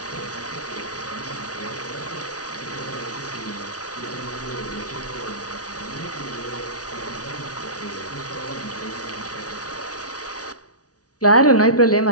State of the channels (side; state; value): right; late; 0.68 ms